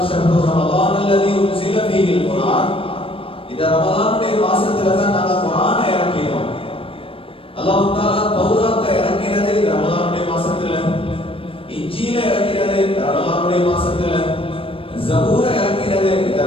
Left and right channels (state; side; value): late; right; 0.26 ms